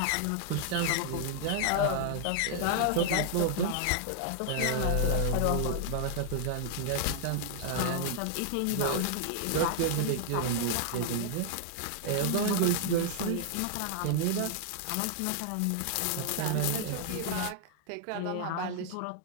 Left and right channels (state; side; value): different; both; correlation 0.00